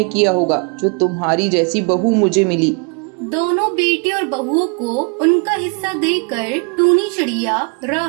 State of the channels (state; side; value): quieter; left; 35.6 dB